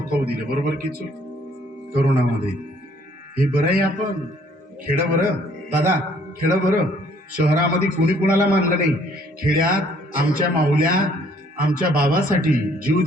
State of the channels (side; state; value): both; normal; correlation 0.62